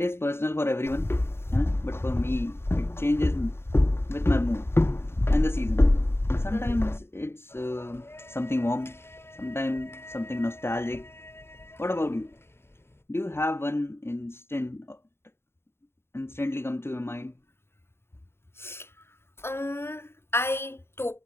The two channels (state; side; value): late; right; 0.12 ms